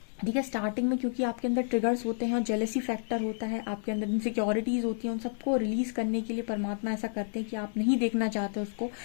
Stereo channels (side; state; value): right; silent; 57 dB below the other